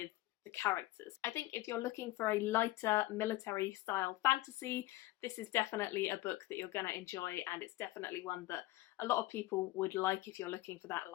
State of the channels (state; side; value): quieter; right; 17.5 dB